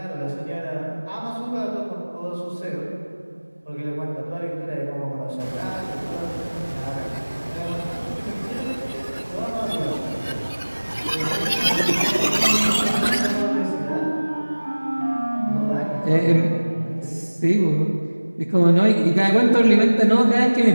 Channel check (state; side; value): inverted; both; correlation -1.00